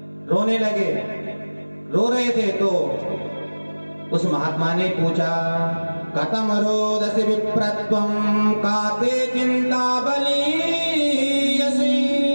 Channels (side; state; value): both; inverted; correlation -1.00